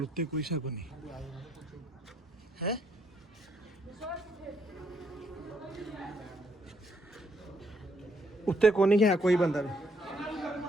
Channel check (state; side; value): normal; both; correlation 0.72